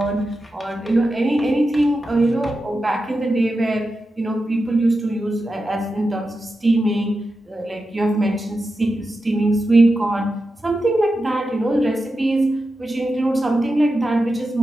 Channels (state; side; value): normal; both; correlation 0.90